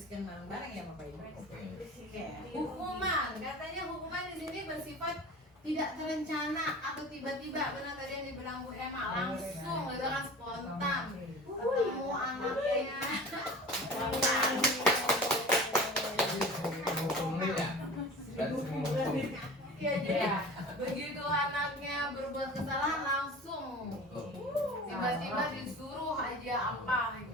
bareng-bareng ya Bapak Ibu. Oke. Hukuman, katanya hukuman di sini bersifat tidak terencana atau tiba-tiba. Benar tadi yang dibilang Bu Emma, langsung gitu kan, spontan ketemu anaknya. Hukumnya ya. Dan hukum. Iya, jadi begitu anaknya berbuat kesalahan langsung tiba-tiba disuruh aja apa gitu.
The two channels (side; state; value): both; normal; correlation 0.38